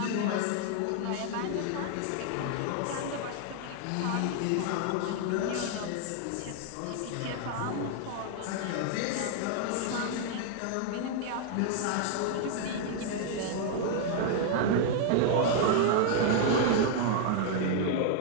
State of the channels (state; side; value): different; both; correlation 0.00